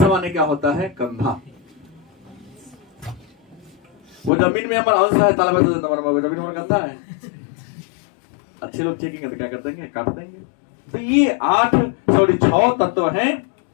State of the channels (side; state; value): right; drops out; at 4.3 s